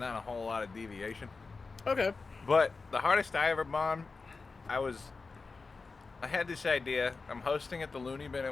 a whole lot of deviation. Okay. But the hardest I ever bombed, I had this idea. I'm hosting at the Looney Bin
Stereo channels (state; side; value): quieter; right; 4.2 dB